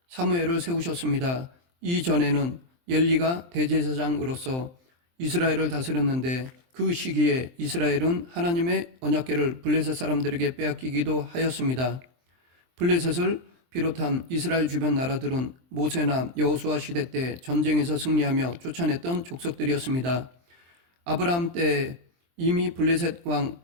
사무엘을 세우셨습니다. 이전에는 엘리가 대제사장으로서 이스라엘을 다스렸는데 그 시기에 이스라엘은 하나님의 언약궤를 블레셋 사람들에게 빼앗기기도 하였습니다. 블레셋을 비롯한 이스라엘 주변 나라들은 모세나 여호수아 시대 때 전쟁에서 승리하며 쫓아냈던 족속들이었습니다. 아브라함 때 이미 블레셋 왕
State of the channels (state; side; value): late; left; 23 ms